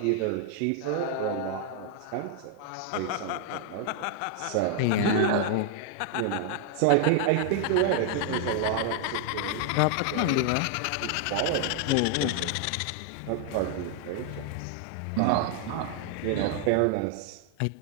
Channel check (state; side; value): different; both; correlation 0.00